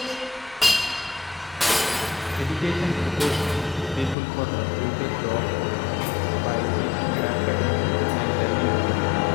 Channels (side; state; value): right; drops out; at 4.2 s